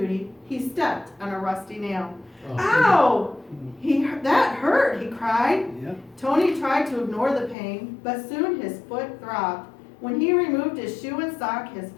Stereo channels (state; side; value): drops out; right; at 7.6 s